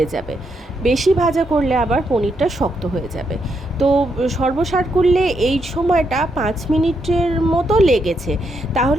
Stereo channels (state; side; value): normal; both; correlation 0.79